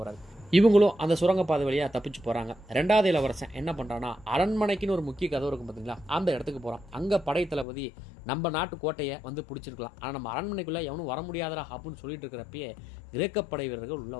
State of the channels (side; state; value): right; drops out; at 7.7 s